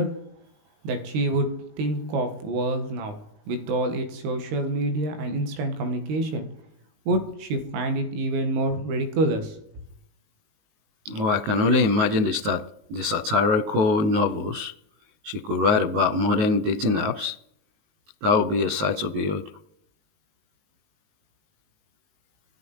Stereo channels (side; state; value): left; late; 19 ms